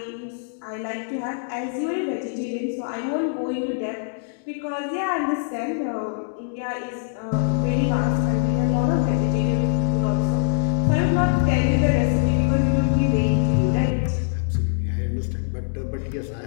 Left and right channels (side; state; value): right; silent; digital silence